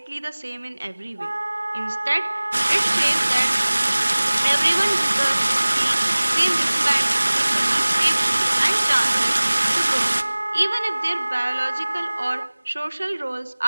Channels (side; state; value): both; inverted; correlation -1.00